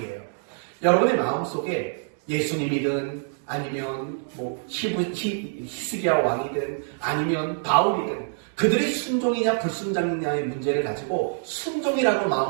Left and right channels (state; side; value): silent; left; digital silence